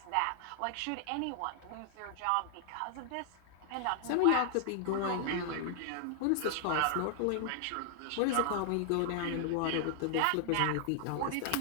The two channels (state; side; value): different; both; correlation 0.00